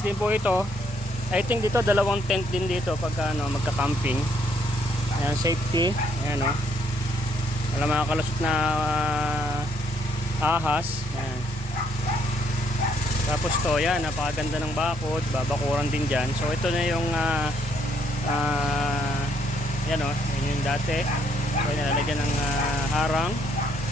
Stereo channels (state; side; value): normal; both; correlation 0.69